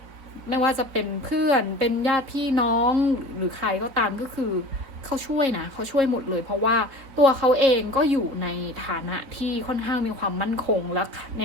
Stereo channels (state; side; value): late; left; 3.9 ms